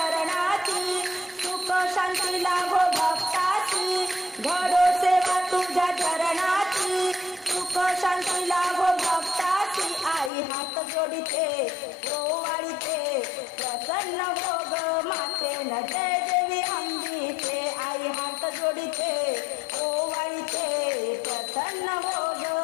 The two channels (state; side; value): drops out; right; at 10.3 s